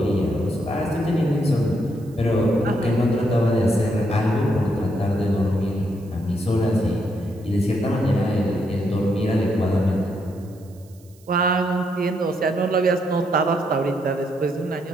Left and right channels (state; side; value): noise; right; hiss, 29 dB below the sound